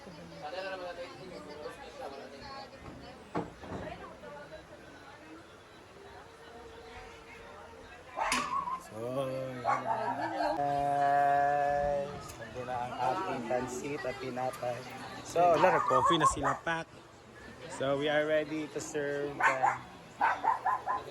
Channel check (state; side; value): identical; both; correlation 1.00